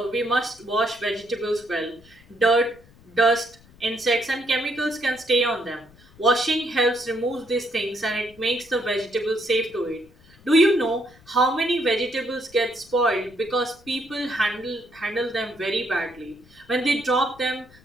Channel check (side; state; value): left; noise; rumble, 26 dB below the sound